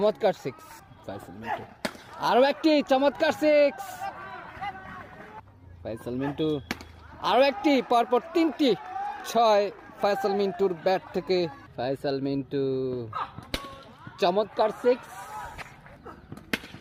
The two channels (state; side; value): identical; both; correlation 1.00